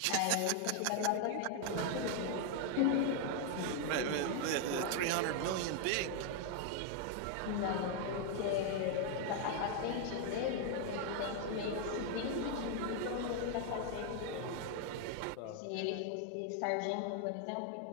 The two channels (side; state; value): both; different; correlation 0.00